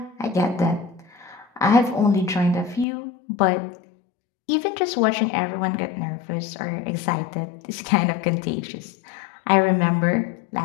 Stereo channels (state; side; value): drops out; right; at 2.9 s